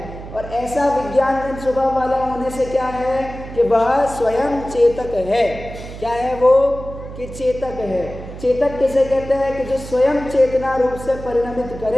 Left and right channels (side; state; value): right; noise; hum, 12 dB below the sound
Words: और ऐसा विज्ञान घन स्वभाव वाला होने से क्या है कि वह स्वयं चेतक है। क्या है वो कि चेतक है। चेतक किसे कहते हैं कि जो स्वयं चेतना रूप से परिणमित